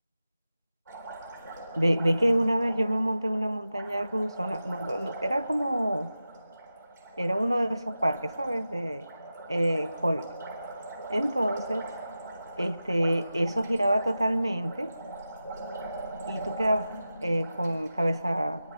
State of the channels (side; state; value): both; inverted; correlation -0.93